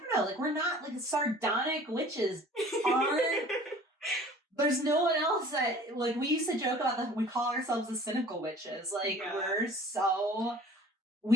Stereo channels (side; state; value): both; normal; correlation 0.47